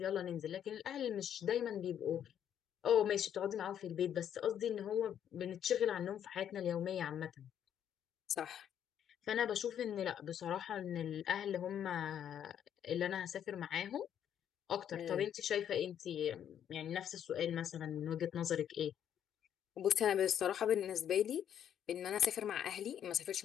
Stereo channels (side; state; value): right; quieter; 9.6 dB